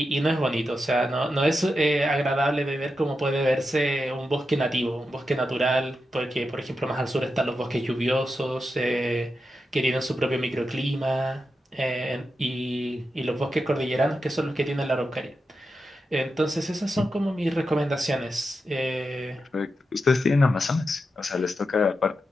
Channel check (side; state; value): both; normal; correlation 0.88